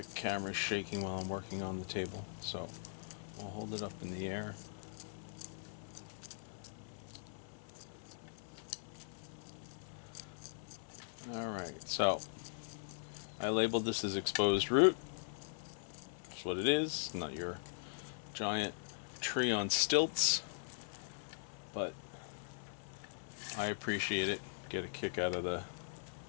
camera's shaking while I'm working on the table, so I'll hold it up in the air. Alright, so I labeled this as exposed root. That's what it is, not your giant tree on stilts, but I appreciate it. Get a kick out of the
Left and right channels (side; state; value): right; silent; 51 dB below the other